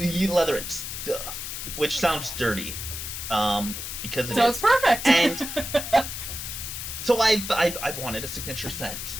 and stuff, which sounds dirty, because So it's perfect. And so I've wanted a signature scent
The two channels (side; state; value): left; noise; hiss, 6 dB below the sound